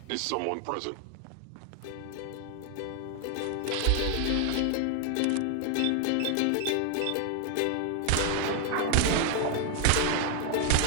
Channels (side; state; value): both; different; correlation 0.00